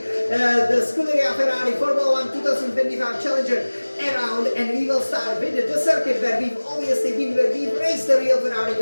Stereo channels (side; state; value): both; inverted; correlation -1.00